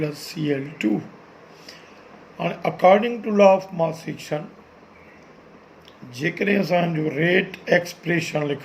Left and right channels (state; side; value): identical; both; correlation 1.00